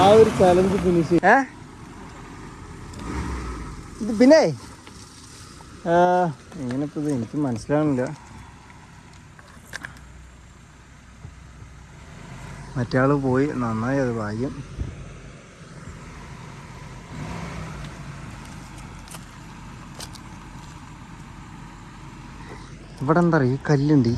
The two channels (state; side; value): identical; both; correlation 1.00